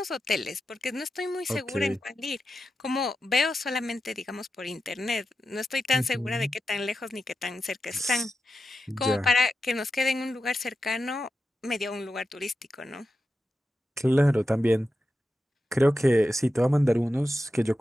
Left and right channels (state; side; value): normal; both; correlation 0.91